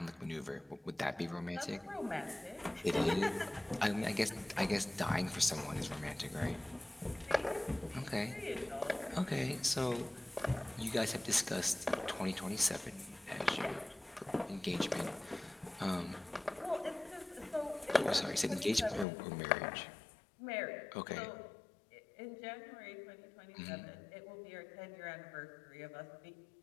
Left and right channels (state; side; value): drops out; right; at 19.1 s